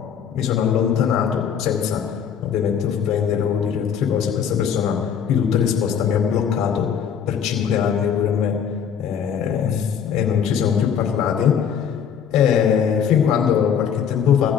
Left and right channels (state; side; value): quieter; right; 7.8 dB